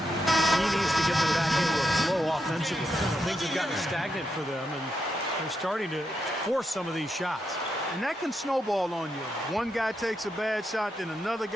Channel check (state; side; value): normal; both; correlation 0.83